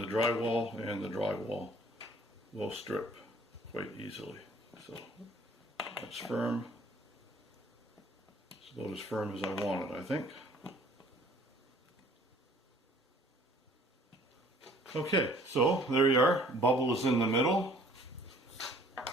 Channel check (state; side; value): normal; both; correlation 0.55